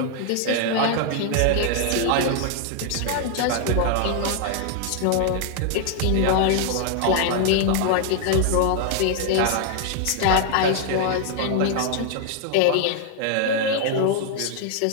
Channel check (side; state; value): both; different; correlation 0.00